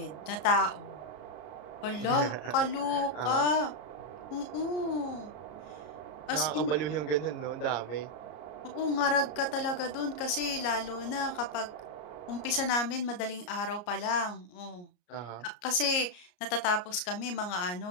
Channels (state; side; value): late; right; 34 ms